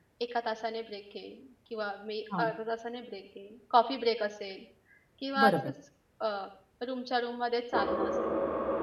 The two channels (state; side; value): identical; both; correlation 1.00